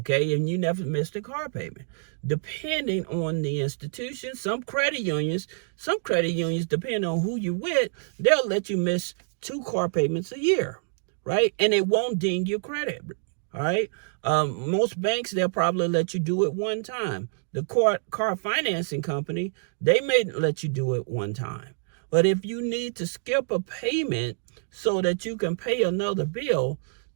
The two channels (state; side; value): silent; left; digital silence